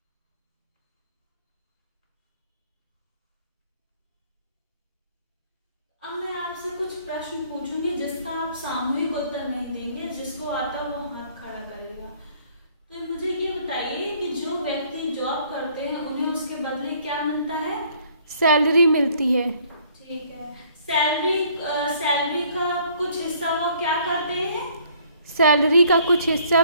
अब मैं आपसे कुछ प्रश्न पूछूंगी जिसका आप सामूहिक उत्तर नहीं देंगे, जिसको आता वो हाथ खड़ा करेगा। तो मुझे ये बताइए कि जो व्यक्ति जॉब करते हैं उन्हें उसके बदले क्या मिलता है? सैलरी मिलती है। ठीक है। सैलरी सैलरी का कुछ हिस्सा वो क्या करते हैं? सैलरी का कुछ हिस्सा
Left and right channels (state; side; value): inverted; both; correlation -0.60